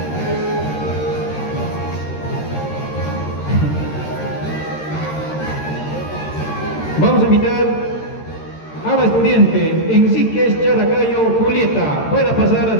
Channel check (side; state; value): right; late; 13 ms